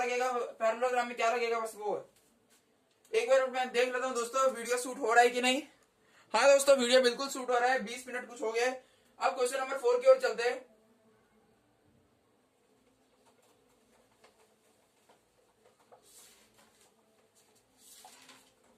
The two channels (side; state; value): both; identical; correlation 1.00